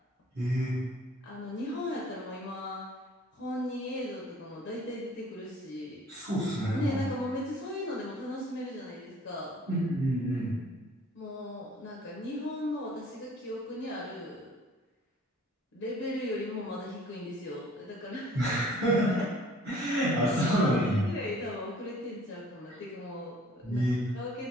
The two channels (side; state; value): both; normal; correlation 0.54